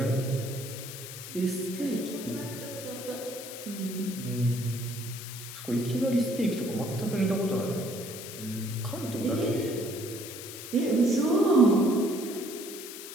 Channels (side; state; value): left; noise; hiss, 11 dB below the sound